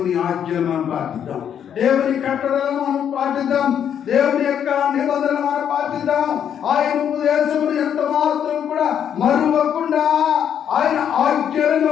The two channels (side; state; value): right; quieter; 8.9 dB